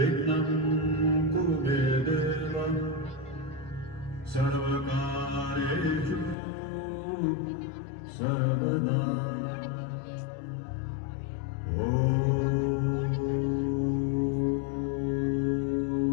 ಕುರು ಮೇ ದೇವ ಸರ್ವಕಾರ್ಯೇಷು ಸರ್ವದಾ.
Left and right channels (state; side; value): drops out; right; at 6.4 s